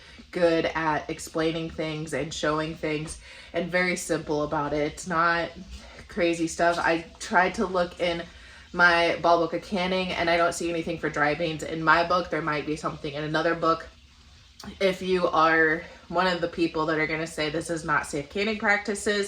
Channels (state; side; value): identical; both; correlation 1.00